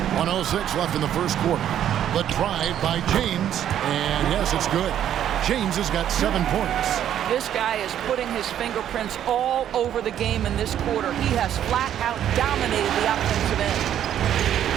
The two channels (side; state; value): left; quieter; 10.5 dB